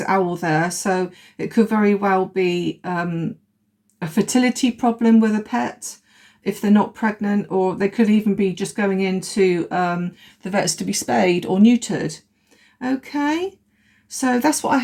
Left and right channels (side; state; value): both; identical; correlation 1.00